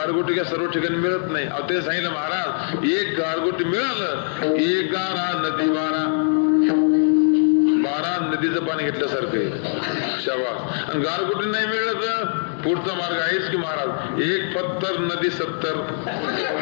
काय सर्व ठिकाणी मिळत नाही. अहो ते सांगितलं महाराज एक गारगोटी मिळालं, एक गारा नदी 12 नदीचं पाणी घेतल्यासारखं आहे. शाबास. आणि गारगोटी नाही मिळलं तर पुढचा मार्ग आहेच की महाराज, एक पत्तर नदी 70.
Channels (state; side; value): silent; right; 64 dB below the other